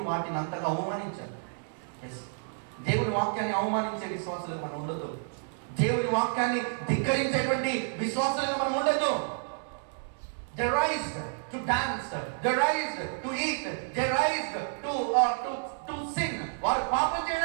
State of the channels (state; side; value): silent; left; digital silence